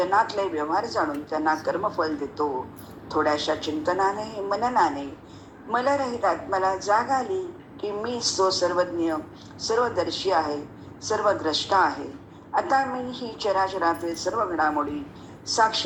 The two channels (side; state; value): both; identical; correlation 1.00